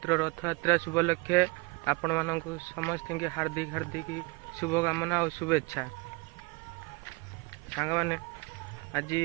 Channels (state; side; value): quieter; left; 27.3 dB